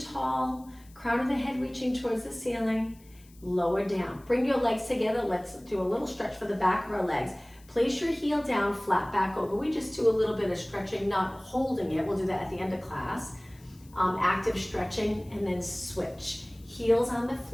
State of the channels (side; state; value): left; noise; hiss, 27 dB below the sound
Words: crown of the head reaching towards the ceiling, lower down. Bring your legs together. Let's do a little stretch for the back of our legs. Place your heel down, flat back over. We just do a little bit of stretching, not holding it. We'll do that at the end of class. Active stretching, and then switch. Heels on the